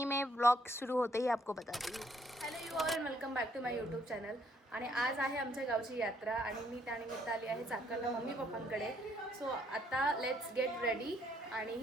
में व्लॉग सुरू होते ही आपको बताती हूँ। Hello you all, welcome back to my YouTube channel. आणि आज आहे आमच्या गावची यात्रा आणि मी त्यानिमित्त आली आहे चाकणला मम्मी पप्पांकडे. सो आता लेट्स गेट रेडी आणि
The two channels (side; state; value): both; normal; correlation 0.68